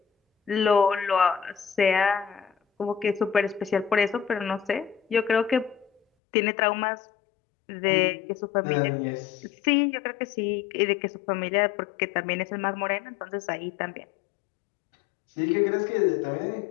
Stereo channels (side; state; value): right; drops out; at 6.0 s